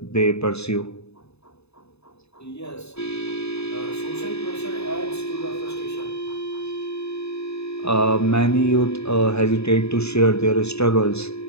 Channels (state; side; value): late; right; 0.79 ms